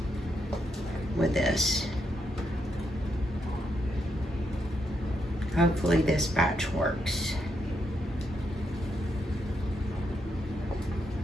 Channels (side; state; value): both; normal; correlation 0.80